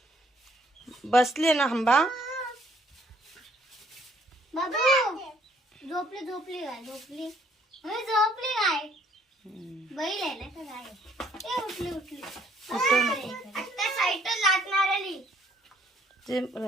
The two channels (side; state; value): both; normal; correlation 0.64